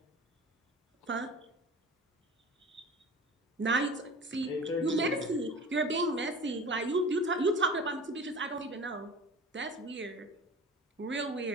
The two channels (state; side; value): normal; both; correlation 0.38